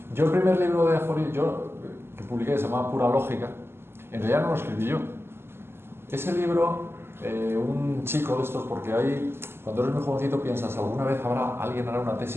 Yo el primer libro de aforismo que publiqué se llamaba Pura Lógica. En realidad no lo escribí yo. Ese libro, un chico de estos, porque ahí, cuando eres muy jovencito piensas, alguna vez alguien hará una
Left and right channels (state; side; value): late; left; 0.12 ms